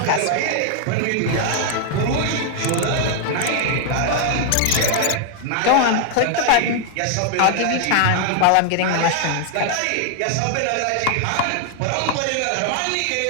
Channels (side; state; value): both; different; correlation 0.00